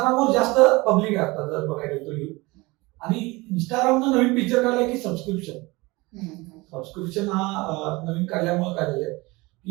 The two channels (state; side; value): quieter; left; 23.1 dB